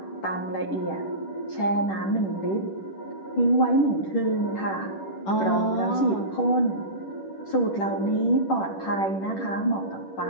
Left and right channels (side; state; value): right; late; 10 ms